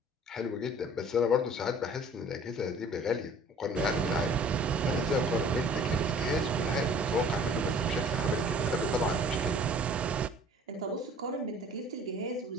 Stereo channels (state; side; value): normal; both; correlation 0.50